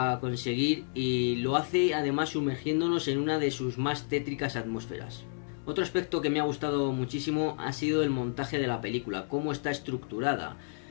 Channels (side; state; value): right; silent; digital silence